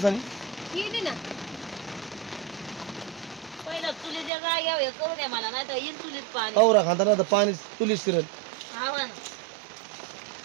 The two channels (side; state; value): left; drops out; at 4.3 s